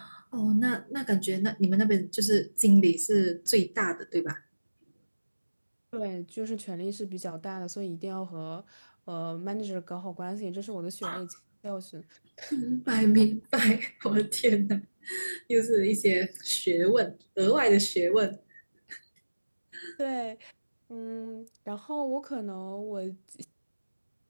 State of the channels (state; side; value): inverted; both; correlation -1.00